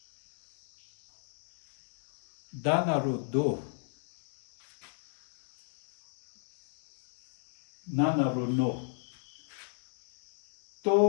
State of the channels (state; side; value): silent; right; digital silence